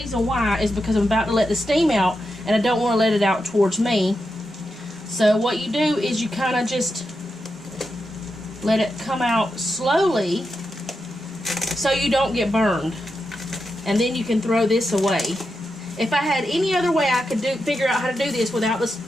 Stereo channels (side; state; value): both; normal; correlation 0.87